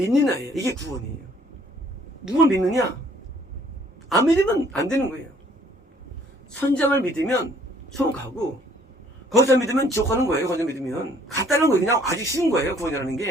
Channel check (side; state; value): both; normal; correlation 0.60